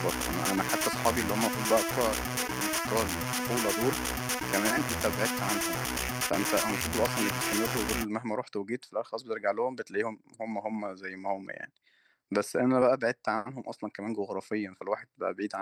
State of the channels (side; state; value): both; identical; correlation 1.00